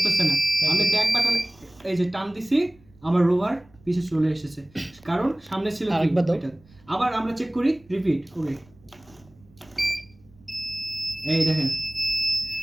না। আমি ব্যাক বাটন এই যে টান দিছি, আমার রোভার পিছে চলে এসেছে, কারণ সামনে ছিল এটা। আবার আমরা চেক করি, রিপিট করি। এই দেখেন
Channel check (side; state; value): right; noise; rumble, 29 dB below the sound